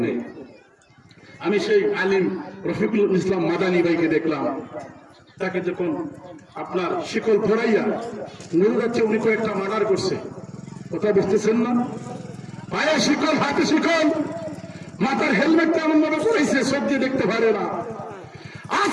নেই। আমি সেই আলিম রফিকুল ইসলাম মাদানী ভাইকে দেখলাম, তাকে যখন আপনার শিকল পড়াইয়া নুরুল যাচ্ছে, উনি কয়েকটা মার্ডার করছে। কথা বুঝতেছেন না? পায়ে শিকল, হাতে শিকল, মাথার হেলমেটটা এমন ভাবে পড়াইছে সব দিয়ে দেখতে পারে না।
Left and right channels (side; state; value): both; identical; correlation 1.00